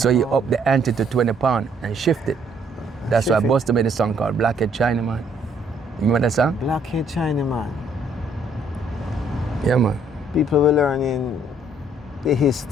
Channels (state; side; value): normal; both; correlation 0.66